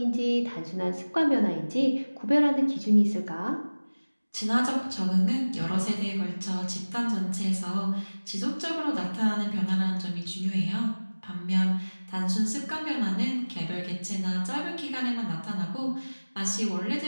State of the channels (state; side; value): inverted; both; correlation -1.00